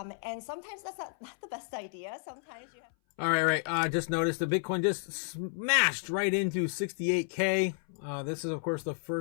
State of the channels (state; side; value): silent; right; 57 dB below the other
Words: sometimes that's not the best idea. Sometimes you have... All right. Just noticed the Bitcoin just smashed right into 68K. This is, of course, the